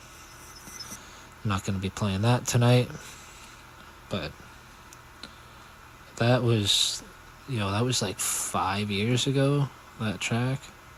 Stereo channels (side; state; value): both; identical; correlation 1.00